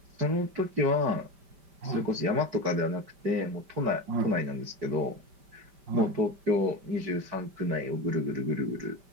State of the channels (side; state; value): left; late; 5.1 ms